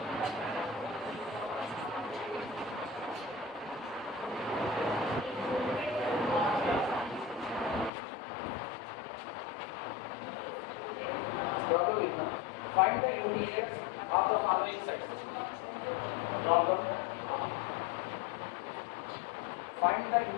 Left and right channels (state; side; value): drops out; right; at 7.9 s